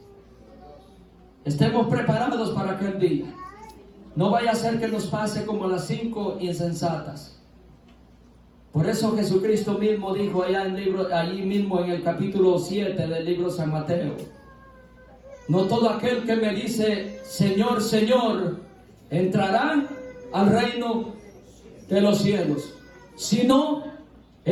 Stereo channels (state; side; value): identical; both; correlation 1.00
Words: Estemos preparados para aquel día. No vaya a ser que nos pase como las 5 insensatas. Por eso Jesucristo mismo dijo allí mismo en el capítulo 7 del libro San Mateo: no todo aquel que me dice Señor, Señor, entrará al reino de los cielos, sino